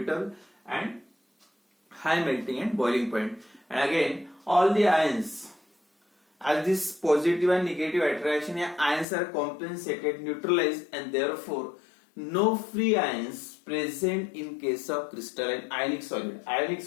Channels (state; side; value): drops out; right; at 9.1 s